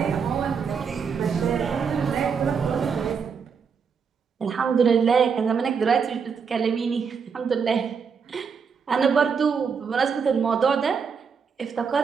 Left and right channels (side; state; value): left; quieter; 6.1 dB